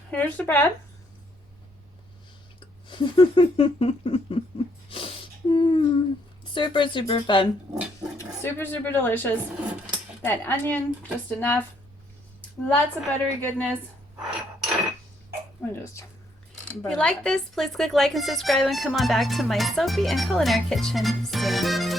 Here's the bread. Super, super fun. Super, super delicious. That onion, just enough. Lots of buttery goodness. If you like this, please click like and subscribe and come on back to my soapy and culinary kitchen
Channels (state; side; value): normal; both; correlation 0.71